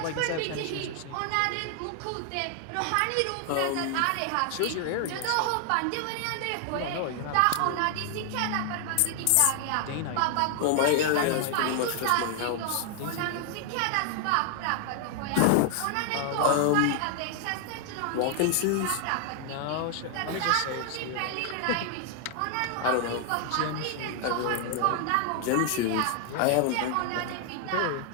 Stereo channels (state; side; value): different; both; correlation 0.00